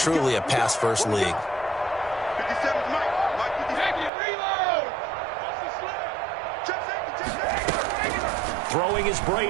a pass-first league. Throwing is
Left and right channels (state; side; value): drops out; left; at 4.1 s